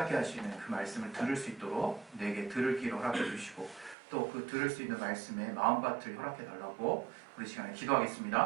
하시는 그 말씀을 들을 수 있도록 내게 들을 길을 허락해 주시고 또 그 들을 수 있는 말씀에 마음밭을 허락해 달라고 우리 시간에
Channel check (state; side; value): drops out; left; at 4.0 s